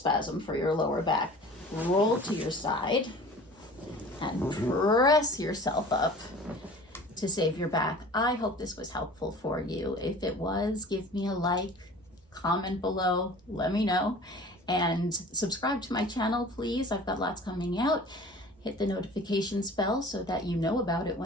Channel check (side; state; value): both; normal; correlation 0.43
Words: for your lower back. Roll to your side and press yourself up to save your back. I hope this was helpful for you. If it was, give me a like, comment below, let me know, and subscribe to my channel, please. I've got lots coming out. Hit the notifications bell so that you know about it